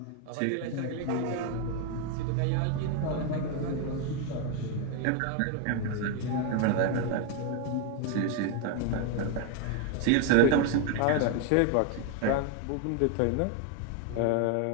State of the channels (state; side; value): different; both; correlation 0.01